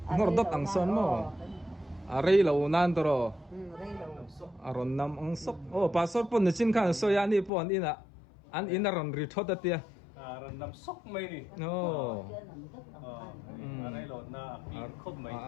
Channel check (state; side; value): drops out; right; at 7.5 s